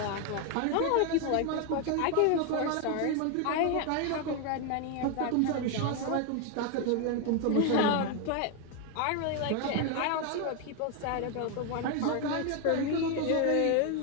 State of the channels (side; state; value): both; different; correlation 0.01